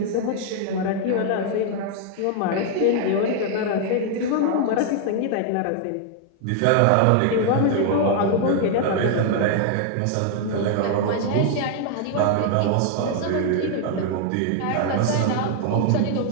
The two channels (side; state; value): both; different; correlation 0.00